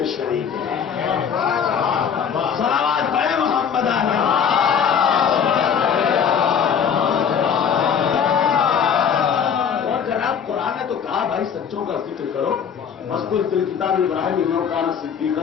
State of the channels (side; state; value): right; quieter; 7.4 dB